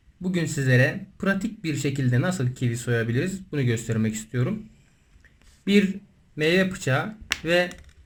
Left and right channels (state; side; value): identical; both; correlation 1.00